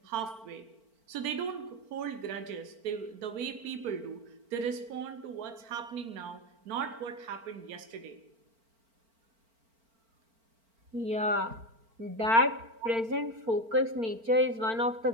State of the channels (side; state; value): left; late; 4.4 ms